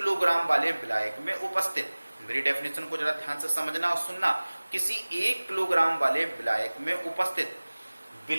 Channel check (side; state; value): both; inverted; correlation -1.00